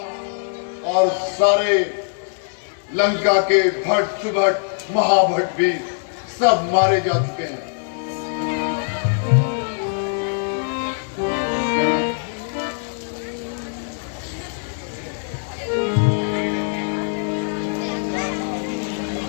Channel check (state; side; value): silent; right; digital silence